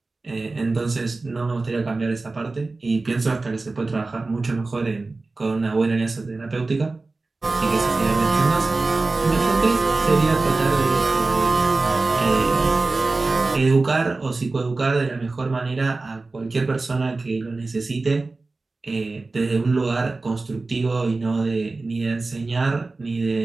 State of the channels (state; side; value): quieter; left; 3.5 dB